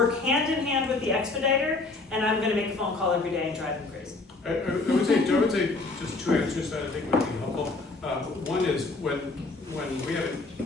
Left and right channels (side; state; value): right; quieter; 3.5 dB